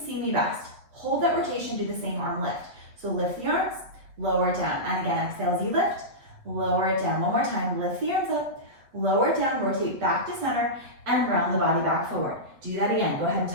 me best. Hold that rotation, do the same arm lift. So lift the arms, lower it down. And again, exhale as you lift, lower it down. One more time, lift the arms up, lower it down, rotate back to center, and round the body back forward. Do that again. Go ahead and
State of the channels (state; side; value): late; left; 8.0 ms